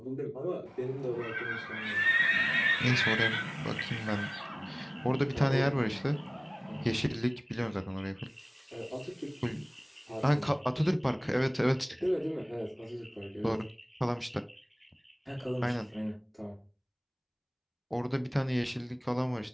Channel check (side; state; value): both; identical; correlation 1.00